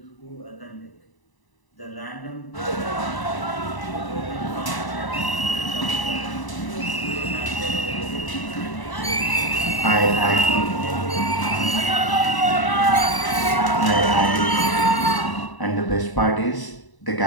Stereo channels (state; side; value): late; right; 1.0 ms